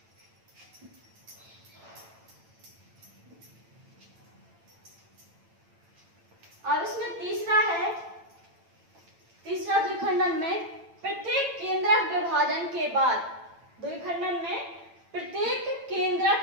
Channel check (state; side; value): late; left; 8.9 ms